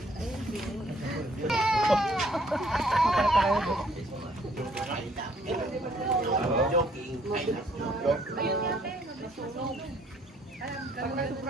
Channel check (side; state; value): both; normal; correlation 0.63